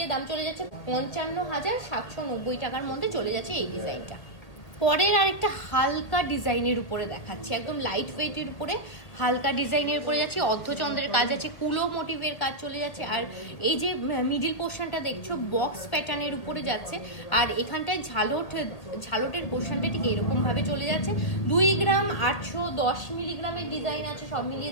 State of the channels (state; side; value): late; right; 1.9 ms